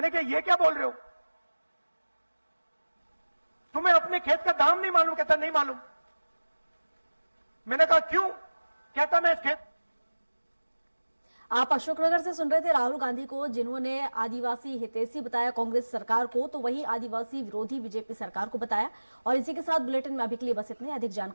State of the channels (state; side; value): inverted; both; correlation -1.00